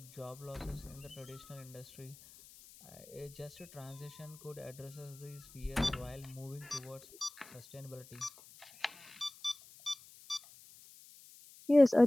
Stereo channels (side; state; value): left; noise; hiss, 20 dB below the sound